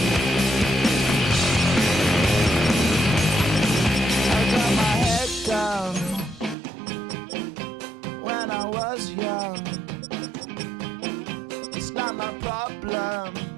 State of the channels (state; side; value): drops out; left; at 6.6 s